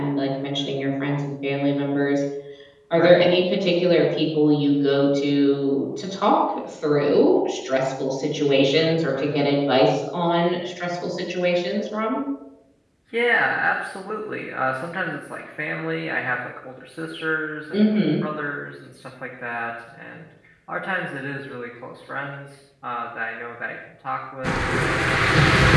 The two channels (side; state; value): both; identical; correlation 1.00